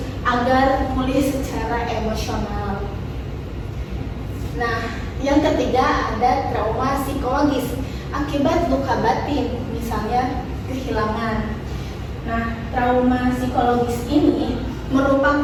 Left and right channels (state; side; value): identical; both; correlation 1.00